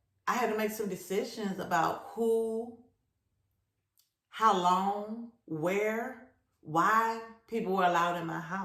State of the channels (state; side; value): identical; both; correlation 1.00